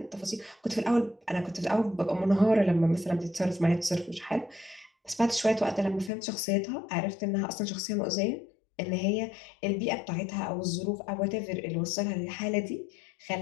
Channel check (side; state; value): right; drops out; at 6.1 s